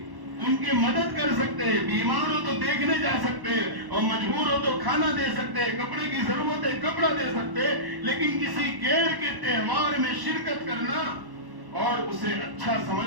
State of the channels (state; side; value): late; left; 1.1 ms